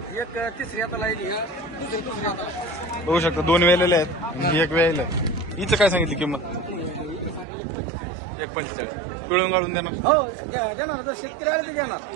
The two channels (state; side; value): drops out; left; at 7.5 s